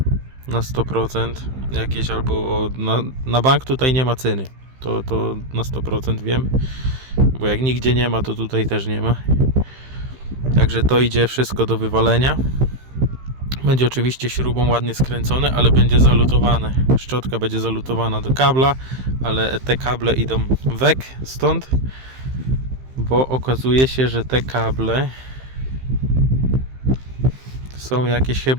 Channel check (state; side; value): late; left; 15 ms